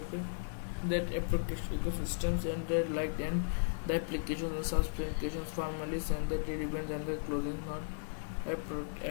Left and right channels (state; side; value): silent; right; digital silence